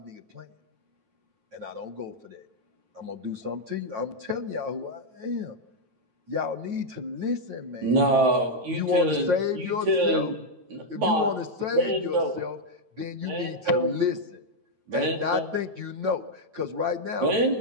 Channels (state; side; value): late; left; 9.2 ms